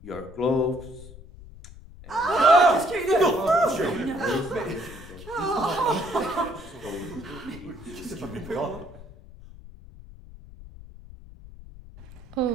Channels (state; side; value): noise; left; rumble, 18 dB below the sound